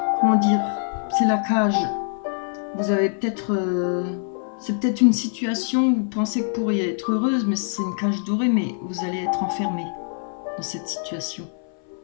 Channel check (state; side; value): silent; right; 63 dB below the other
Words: comment dire, c'est la cage. Vous avez peut-être... c'est peut-être une situation où vous pensez que vous pourriez être heureuse, mais c'est une cage dorée, mais vous allez être enfermé dans cette situation.